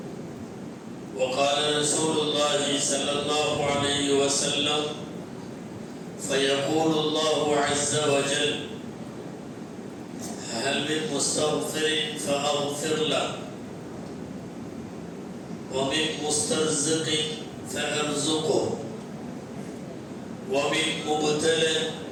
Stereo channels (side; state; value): both; identical; correlation 1.00